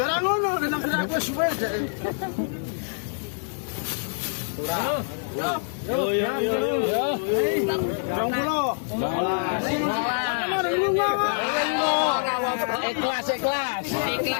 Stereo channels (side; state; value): right; silent; digital silence